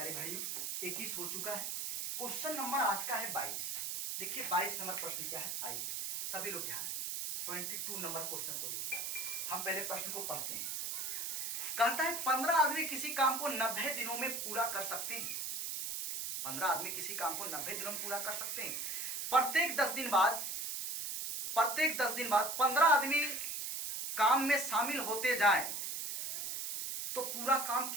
भाइयों, 21 हो चुका है। क्वेश्चन नंबर आज का है 22। देखिए 22 नंबर प्रश्न क्या है, आइए सभी लोग ध्यान दें। 22 नंबर क्वेश्चन को देखिए, हम पहले प्रश्न को पढ़ते हैं। कहता है 15 आदमी किसी काम को 90 दिनों में पूरा कर सकते हैं। 15 आदमी किसी काम को 90 दिनों में पूरा कर सकते हैं। प्रत्येक 10 दिन बाद 15 आदमी काम में शामिल होते जाएं तो पूरा काम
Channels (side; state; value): right; noise; hiss, 3 dB below the sound